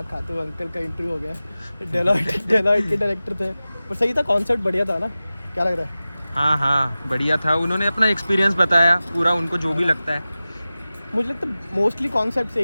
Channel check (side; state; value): both; inverted; correlation -0.96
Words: खाते हुए अंकल का इंटरव्यू हो गया। डेलॉइट के डायरेक्टर थे, पर सही था, कॉन्सेप्ट बढ़िया था ना? क्या लग रहा है? हाँ बढ़िया था। उन्होंने अपना एक्सपीरियंस बताया पूरा, उनको जो भी लगता है। मुझे लगता है मोस्टली कॉन्सेप्ट